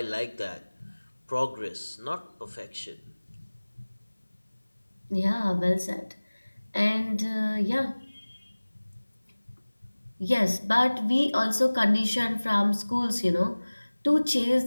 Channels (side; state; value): both; inverted; correlation -1.00